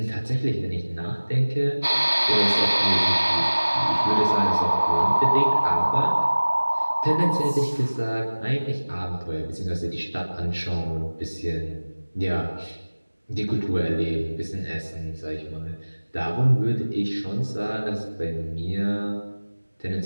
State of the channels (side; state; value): both; inverted; correlation -1.00